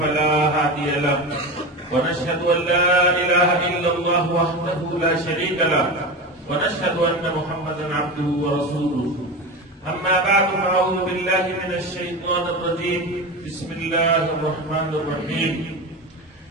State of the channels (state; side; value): normal; both; correlation 0.24